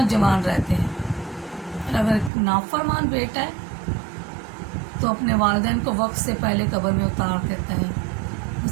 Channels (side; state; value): left; drops out; at 2.3 s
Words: जवान रहते हैं। और अगर एक नाफरमान बेटा है तो अपने वालिदैन को वक्त से पहले कब्र में उतार देता है,